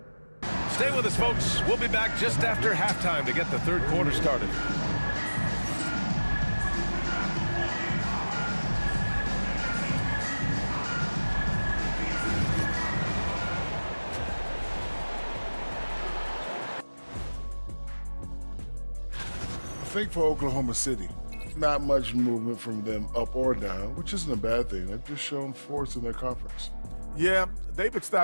Stay with us, folks. We'll be back just after halftime to get the third quarter started. I think for Oklahoma City, not much movement from them up or down, which isn't a bad thing. They've just shown force in their conference. Yeah, they've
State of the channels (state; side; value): inverted; both; correlation -1.00